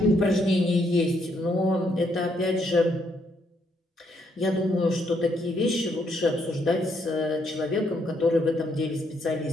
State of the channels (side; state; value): both; normal; correlation 0.74